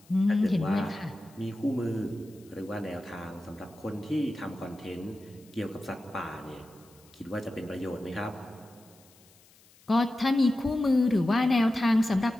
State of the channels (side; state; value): left; noise; hiss, 28 dB below the sound